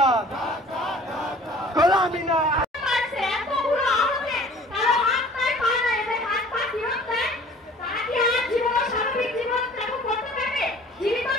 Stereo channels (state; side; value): normal; both; correlation 0.49